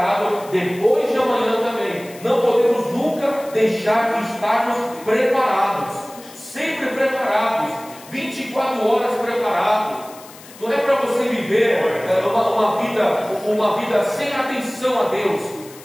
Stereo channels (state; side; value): noise; left; hiss, 20 dB below the sound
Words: depois de amanhã também. Não podemos nunca deixar de estarmos preparados. Sempre preparados. 24 horas preparados. Não é para você viver uma vida sem atenção a Deus.